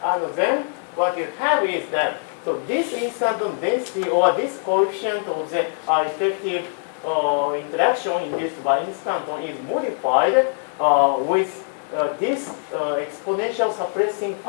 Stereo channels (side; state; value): right; silent; 62 dB below the other